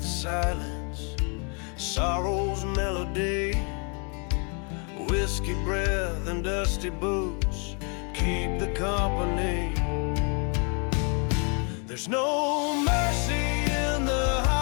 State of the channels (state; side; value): quieter; right; 36.8 dB